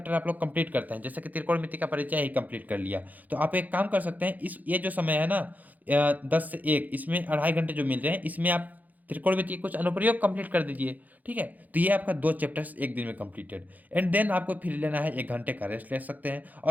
आप लोग कंप्लीट करते हैं, जैसे कि त्रिकोणमिति का परिचय ही कंप्लीट कर लिया, तो आप एक काम कर सकते हैं, इस ये जो समय है ना 10 से 1, इसमें 2.5 घंटे जो मिल रहे हैं, इसमें आप त्रिकोणमिति के कुछ अनुप्रयोग कंप्लीट कर दीजिए। ठीक है, तो ये आपका 2 चैप्टर्स एक दिन में कंप्लीटेड। एंड देन आपको फिर लेना है 1 घंटे का रेस्ट ले सकते हैं,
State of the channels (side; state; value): left; late; 0.081 ms